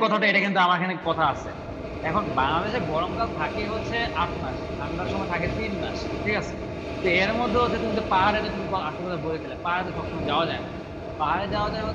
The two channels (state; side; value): identical; both; correlation 1.00